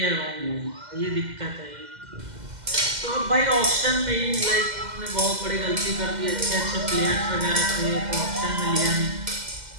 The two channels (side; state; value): left; late; 2.1 ms